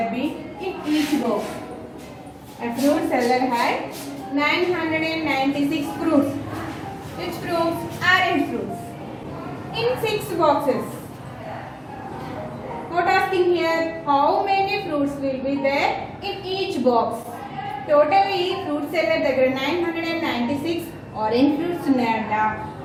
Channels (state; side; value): identical; both; correlation 1.00